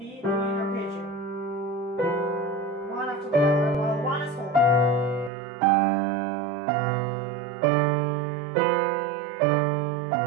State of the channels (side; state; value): left; drops out; at 5.3 s